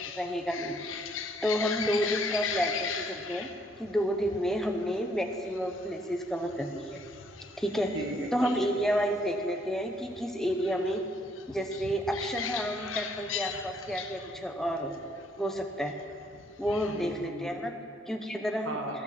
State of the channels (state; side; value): normal; both; correlation 0.67